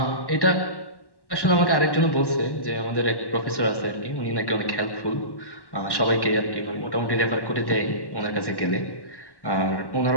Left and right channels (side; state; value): right; late; 1.1 ms